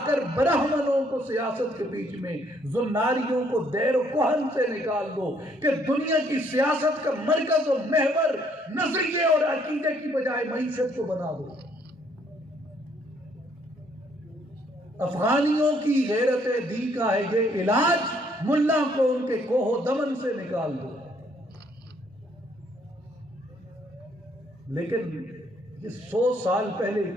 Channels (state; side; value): normal; both; correlation 0.66